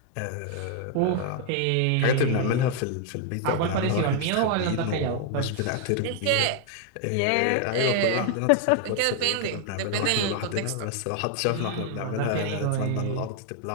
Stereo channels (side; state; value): both; different; correlation 0.00